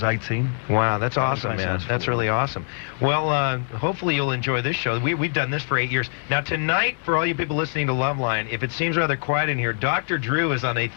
18. Wow, that's awesome, man. Sounds That's really awesome. Well, hopefully you'll enjoy this show. We've done this for 8 years. Now, tonight, for all you people listening to Loveline, if it seems rather quiet in here, Dr. Drew is on a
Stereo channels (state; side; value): silent; right; 63 dB below the other